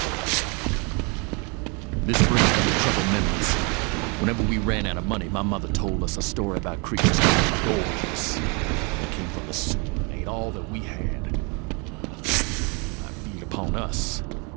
This brings back troubled memories. Whenever we ran out of money, my mother told us a story about creatures called doors. They came from the sewer and ate all that we had. I feed upon us.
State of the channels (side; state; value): left; quieter; 32.1 dB